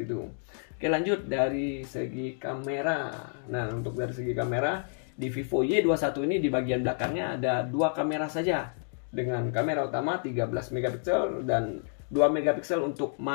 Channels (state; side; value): silent; right; digital silence